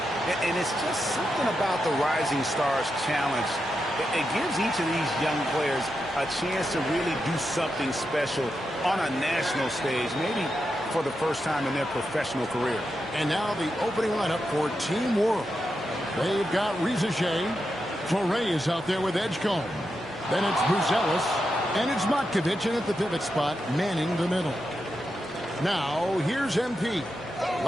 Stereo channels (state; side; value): normal; both; correlation 0.87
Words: And it's just something about the Rising Stars Challenge. It gives each of these young players a chance to really do something special on a national stage, maybe for the first time in their professional career. And now the opening lineup for Team World. They've got Reza Shea. Torrey is out there with Edgecombe. Then it's Buzelis. And it's Matkovic in at the pivot spot, manning the middle. Now, here's MP.